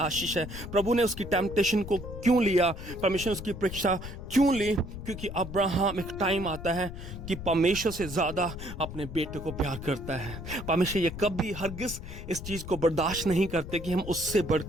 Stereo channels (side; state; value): left; noise; rumble, 10 dB below the sound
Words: है। प्रभु ने उसकी टेम्पटेशन को क्यों लिया, परमेश्वर ने उसकी परीक्षा क्यों ली? क्योंकि अब्राहम, एक टाइम आता है कि परमेश्वर से ज्यादा अपने बेटे को प्यार करता है। परमेश्वर ये कभी हरगिज इस चीज को बर्दाश्त नहीं करते कि हम उससे